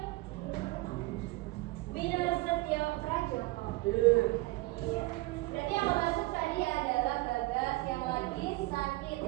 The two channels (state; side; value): quieter; left; 21.1 dB